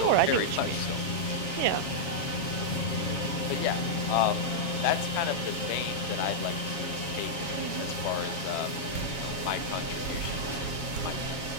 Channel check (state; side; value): late; right; 7.3 ms